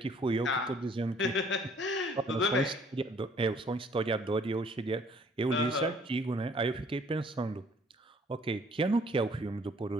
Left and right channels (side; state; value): both; normal; correlation 0.59